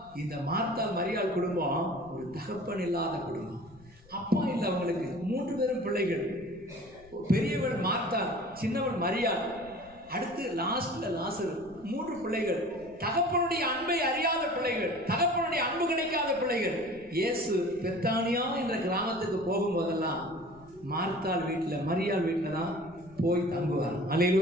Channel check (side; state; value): left; noise; rumble, 25 dB below the sound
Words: இந்த மார்த்தாள் மரியாள் குடும்பம் ஒரு தகப்பன் இல்லாத குடும்பம். அப்பா இல்லை அவங்களுக்கு. 3 பேரும் பிள்ளைகள். பெரியவள் மார்த்தாள், சின்னவள் மரியாள், அடுத்து லாஸ்ட்ல லாசரு. 3 பிள்ளைகள். தகப்பனுடைய அன்பை அறியாத பிள்ளைகள், தகப்பனுடைய அன்பு கிடைக்காத பிள்ளைகள். இயேசு பெத்தானியா என்ற கிராமத்துக்கு போகும்போதெல்லாம் மார்த்தாள் வீட்டுல, மரியாள் வீட்டுல தான் போய் தங்குவார்.